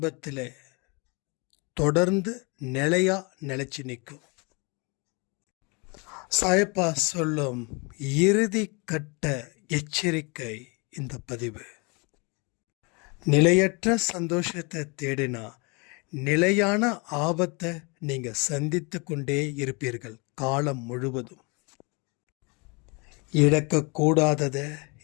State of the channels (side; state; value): right; quieter; 30.4 dB